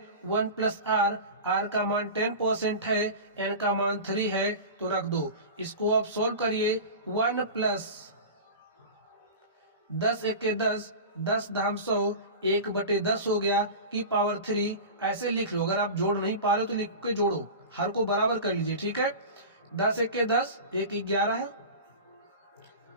1 प्लस आर, आर का मान 10% है, एन का मान 3 है, तो रख दो। इसको आप सोल्व करिए, 1 प्लस 10 1 10, 10 धाम 100, 1/10 हो गया की पावर 3। ऐसे लिख लो, अगर आप जोड़ नहीं पा रहे हो तो लिख के जोड़ो, हर को बराबर कर लीजिए। ठीक है, 10 1 10, 1 11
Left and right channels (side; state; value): both; inverted; correlation -0.30